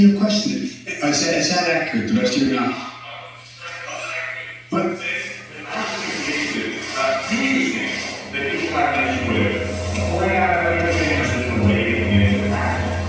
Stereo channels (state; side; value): identical; both; correlation 1.00